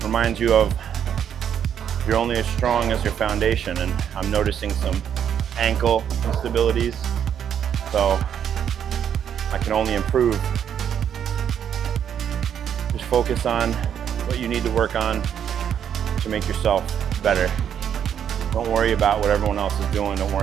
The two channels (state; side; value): quieter; left; 8.8 dB